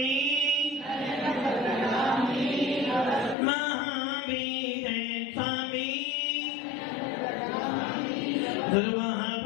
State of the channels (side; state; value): right; drops out; at 3.4 s